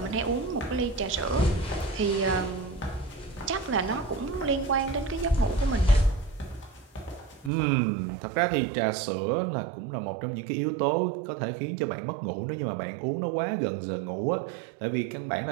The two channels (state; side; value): drops out; left; at 7.5 s